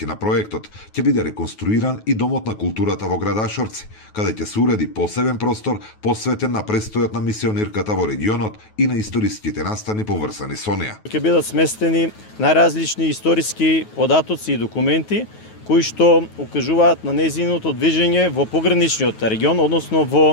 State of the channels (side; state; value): right; late; 9.3 ms